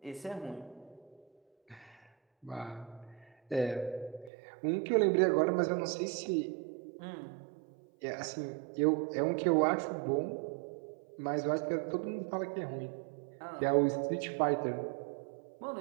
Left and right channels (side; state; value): left; drops out; at 4.3 s